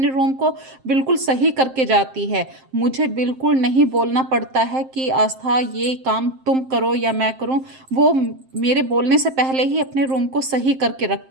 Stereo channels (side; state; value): left; late; 7.6 ms